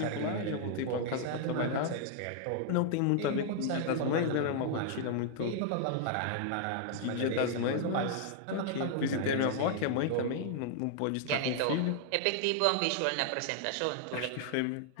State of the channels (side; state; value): both; different; correlation -0.01